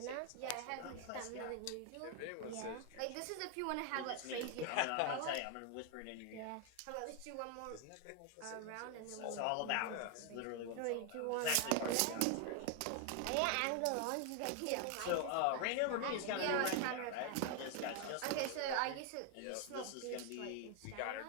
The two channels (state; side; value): different; both; correlation 0.01